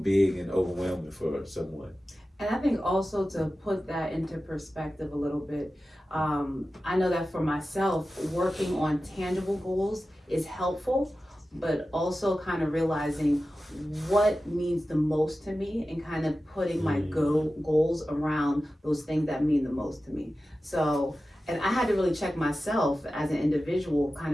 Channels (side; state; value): both; normal; correlation 0.94